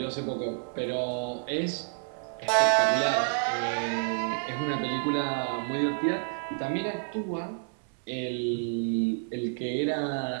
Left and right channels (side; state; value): left; silent; 58 dB below the other